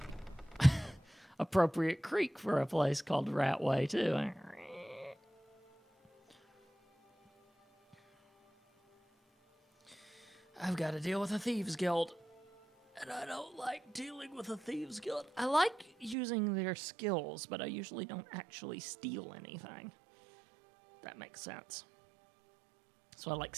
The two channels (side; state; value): left; drops out; at 16.2 s